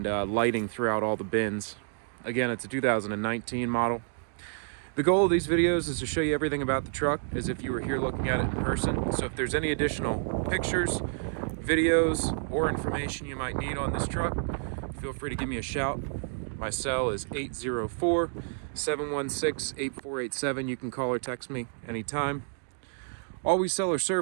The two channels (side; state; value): left; silent; digital silence